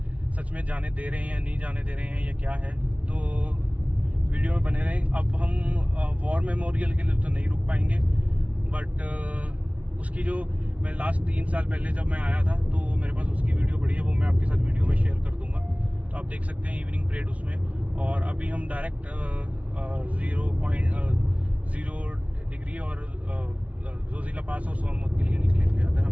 सच में जाने दे रहे हैं या नहीं जाने दे रहे हैं या क्या है, तो वीडियो में बने रहें। अब हम वॉर मेमोरियल के लिए तो नहीं रुक पाएंगे, बट उसकी जो मैं लास्ट 3 साल पहले जब मैं आया था तो मेरे पास उसकी वीडियो पड़ी है, वो मैं आपके साथ वीडियो में शेयर कर दूंगा, तो आप देख सकते हैं इवनिंग परेड उसमें। और अभी हम डायरेक्ट 0.0 डिग्री और जोजिला पास और सोनमर्ग के लिए निकलेंगे, अगर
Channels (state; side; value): late; left; 0.066 ms